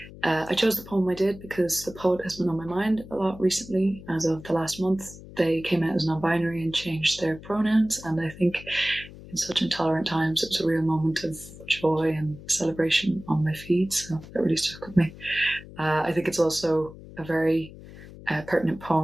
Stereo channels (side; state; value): left; noise; hum, 17 dB below the sound